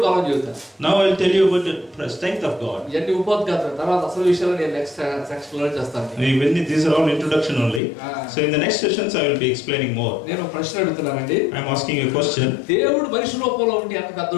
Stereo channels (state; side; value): drops out; right; at 7.8 s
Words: బలం చెబుతాను. Now I will tell you about the strength of God. ఇవన్నీ ఉపోద్ఘాతం, తర్వాత అసలు విషయాలు నేను నెక్స్ట్ సెక్షన్ లో చేస్తాను. These are all introduction only. So in the next sessions I will be explaining more. నేను ప్రశ్న అడుగుతున్నానండి. I am asking you a question. దేవుడు మనిషి రూపంలో ఉండి ఎంత